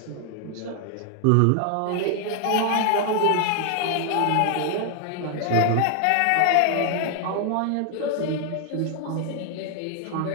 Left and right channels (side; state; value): both; different; correlation 0.00